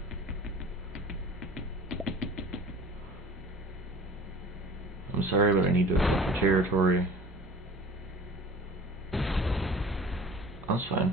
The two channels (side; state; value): both; normal; correlation 0.43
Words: I'm sorry, but I need to accept the territory. That's